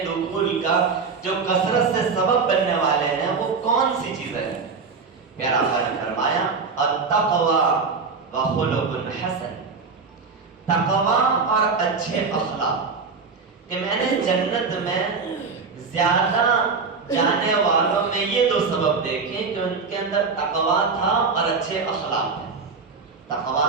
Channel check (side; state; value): left; quieter; 4.9 dB